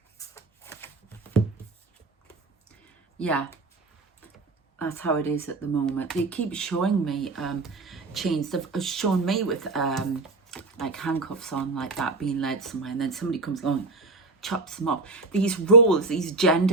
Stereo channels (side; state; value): left; quieter; 3.6 dB